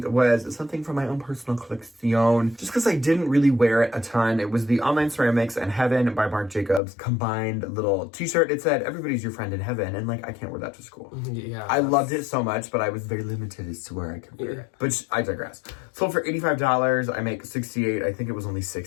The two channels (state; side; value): drops out; right; at 6.8 s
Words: was something from my own personal collection. Just because I didn't really wear it a ton. It was the Online Ceramics and Heaven by Marc Jacobs combined little t-shirt. It said, "Everybody's your friend in heaven." And like, I can't wear that to school. Yeah. I loved it so much, but I was very limited as to where I could wear it. But I digress. Sold for $85. I make $68. I think it was only